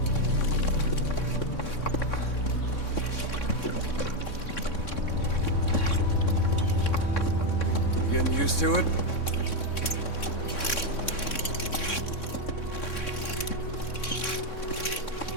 Getting used to it?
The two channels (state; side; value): late; right; 3.6 ms